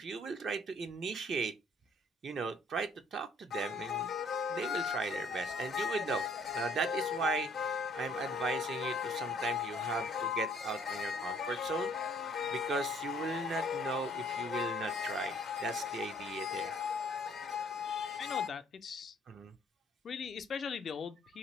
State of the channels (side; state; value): both; normal; correlation 0.60